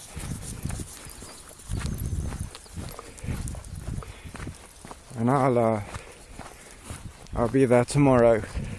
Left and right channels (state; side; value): identical; both; correlation 1.00